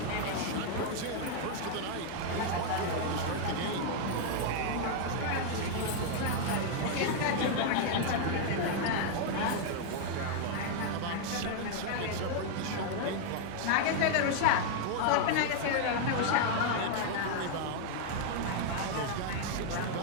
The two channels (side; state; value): both; different; correlation 0.00